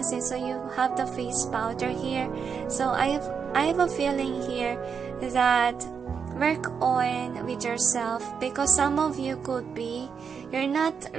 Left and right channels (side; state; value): left; quieter; 6.4 dB